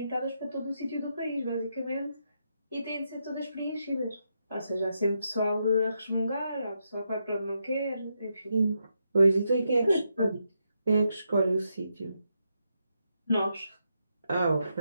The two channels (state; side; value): inverted; both; correlation -0.82